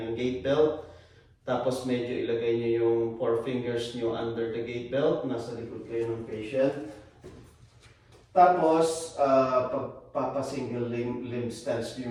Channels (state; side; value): identical; both; correlation 1.00